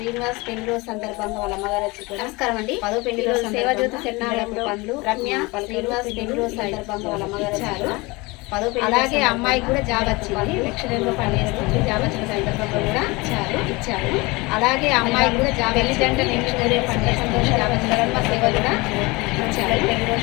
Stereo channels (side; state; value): right; quieter; 24.3 dB